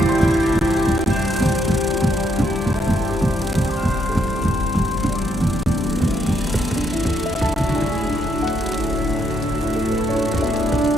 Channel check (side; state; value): both; normal; correlation 0.74